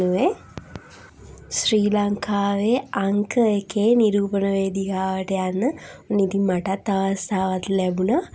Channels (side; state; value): both; identical; correlation 1.00